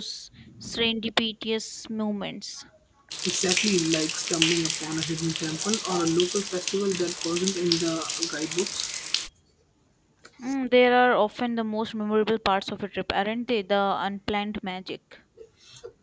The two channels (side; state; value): both; identical; correlation 1.00